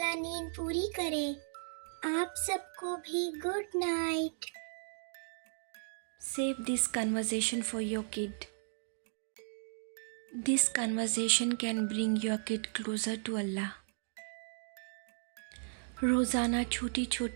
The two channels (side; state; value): left; silent; digital silence